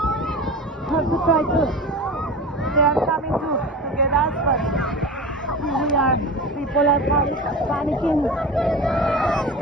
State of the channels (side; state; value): both; normal; correlation 0.31